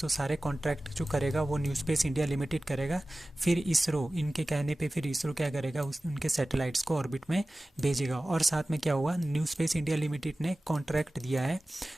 सारे कॉन्ट्रैक्ट जो करेगा वो न्यू स्पेस इंडिया लिमिटेड करेगा। फिर इसरो, इनके कहने पे फिर इसरो क्या करेगा? उनके सैटेलाइट्स को ऑर्बिट में भेजेगा। और साथ में क्या हुआ? न्यू स्पेस इंडिया लिमिटेड ने कॉन्ट्रैक्ट दिया है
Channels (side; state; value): both; normal; correlation 0.97